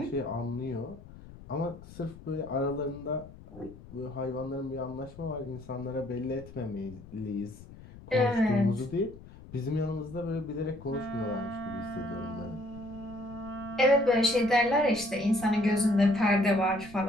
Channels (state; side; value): noise; left; rumble, 18 dB below the sound